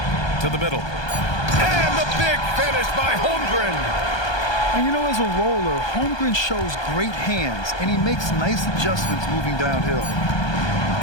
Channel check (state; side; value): late; right; 1.2 ms